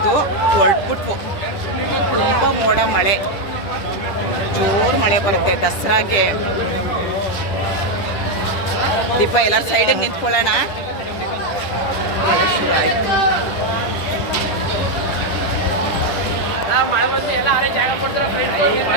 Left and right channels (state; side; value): late; right; 10 ms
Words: ಹೊರಟ್ಬಿಟ್ವು. ತುಂಬ ಮೋಡ ಮಳೆ, ಜೋರು ಮಳೆ ಬರುತ್ತೆ ದಸರಾಗೆ. ದೀಪ ಎಲ್ಲರೂ ಸೈಡಿಗೆ ನಿಂತ್ಕೊಳ್ಳೋಣ. ಮಳೆ ಶುರು ಆಯಿತು.